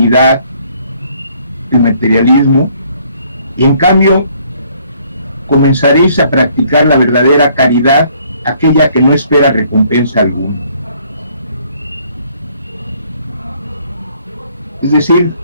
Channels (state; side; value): inverted; both; correlation -0.63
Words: el materialismo, y en cambio comenzaréis a practicar la verdadera caridad, aquella que no espera recompensa alguna. Es decir,